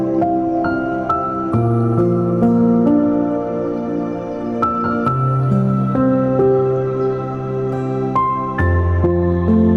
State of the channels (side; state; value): both; identical; correlation 1.00